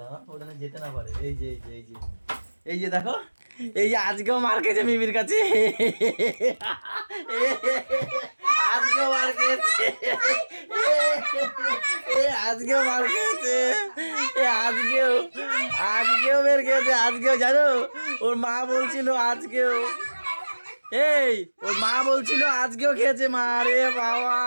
দাদা ওখানে যেতে না পারে। এই যে এই যে এই যে এই যে দেখো, এই যে আজকেও মার খেয়েছে মিমির কাছে, আজকেও মার খেয়েছে, আজকেও মার খেয়েছে, আজকেও আজকেও বের খেয়েছে, আজকেও জানো ওর মা বলছিল আজকেও, এই ওর মা বলছিল আজকেও খেয়েছে মার। রে বাবা,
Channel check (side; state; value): both; inverted; correlation -1.00